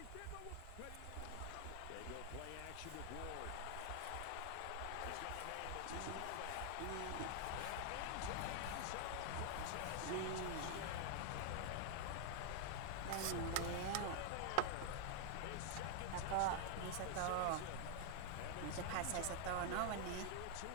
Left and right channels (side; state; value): both; different; correlation 0.00